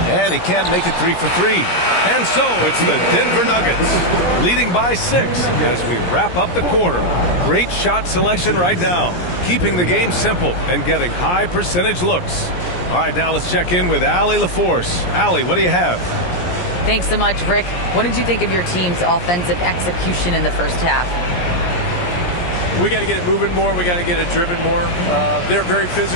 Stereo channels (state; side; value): late; right; 17 ms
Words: And he can't make it 3 for 3. And so it's the Denver Nuggets leading by 6 as we wrap up the quarter. Great shot selection right now, keeping the game simple and getting high percentage looks. All right, now let's check in with Allie LaForce. Allie, what do you have? Thanks so much, Rick. What did you think of your team's offensive execution in the first half? We got to get it moving more. We got to get it driven more. They're very